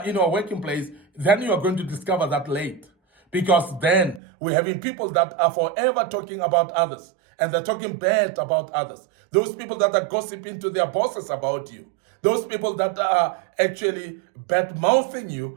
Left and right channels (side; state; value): left; drops out; at 4.2 s